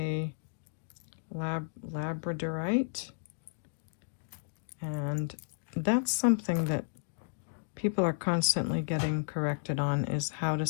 labradorite. And that's something that people are constantly getting corrected on, is how to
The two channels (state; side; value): silent; right; digital silence